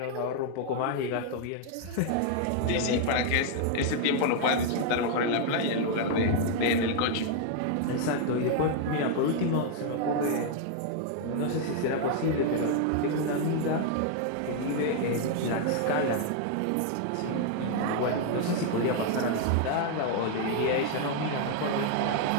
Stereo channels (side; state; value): both; different; correlation 0.00